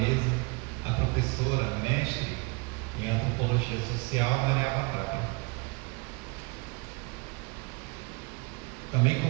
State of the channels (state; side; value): quieter; left; 28.3 dB